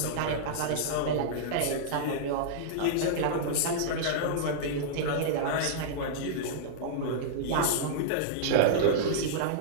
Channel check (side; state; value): both; different; correlation -0.02